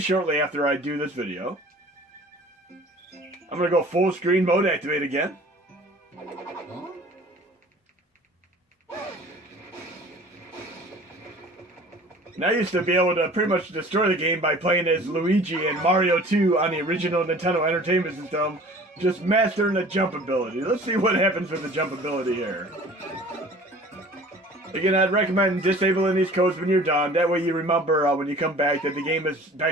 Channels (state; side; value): normal; both; correlation 0.46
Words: after I do this video. I'm going to go full screen mode activate again. And I used to be able to pretty much destroy the game by playing as Luigi and Mario 2 on the original Nintendo Entertainment System. Just mastering the jump ability. Let's see what happens with the jump ability here. Again, I'd recommend disabling these codes when you're done. That way you remember when you come back that the game is